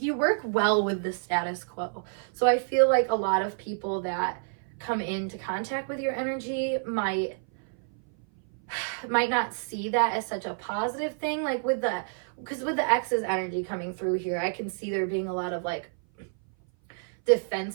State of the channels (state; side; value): silent; left; 57 dB below the other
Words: work well with the status quo. So I feel like a lot of people that come into contact with your energy might not see that as such a positive thing. Like because with the Exes energy coming through here, I can see there being a lot of like